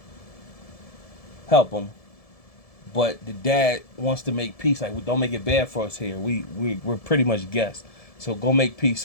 help him, but the dad wants to make peace. Like, don't make it bad for us here. We're pretty much guests, so go make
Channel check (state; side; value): late; right; 1.7 ms